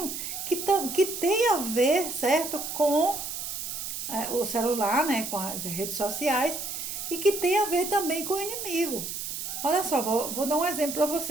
que tem a ver, certo, com o celular, né, com as redes sociais, e que tem a ver também com o inimigo. Olha só, vou dar um exemplo para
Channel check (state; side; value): noise; right; hiss, 5 dB below the sound